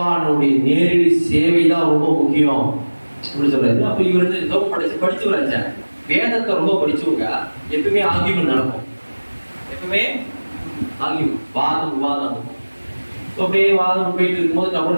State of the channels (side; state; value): both; inverted; correlation -1.00